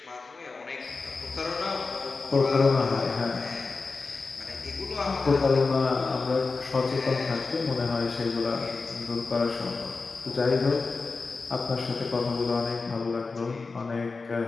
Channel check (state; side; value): quieter; right; 4.1 dB